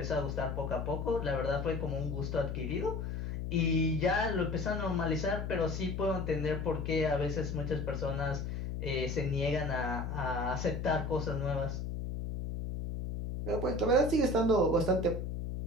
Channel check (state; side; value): noise; left; hum, 4 dB below the sound